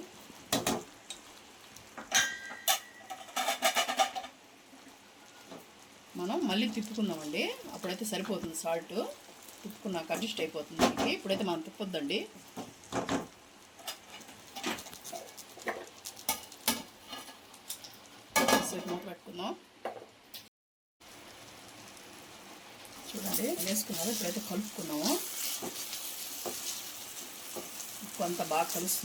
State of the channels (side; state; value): both; identical; correlation 1.00